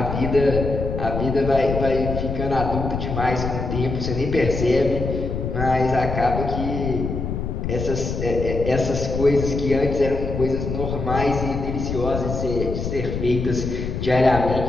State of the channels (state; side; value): noise; left; rumble, 4 dB below the sound